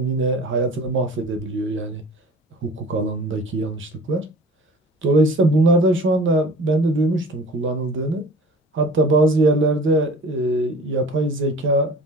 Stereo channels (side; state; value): both; normal; correlation 0.43